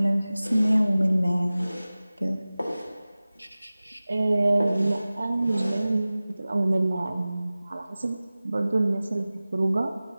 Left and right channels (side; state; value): both; inverted; correlation -0.98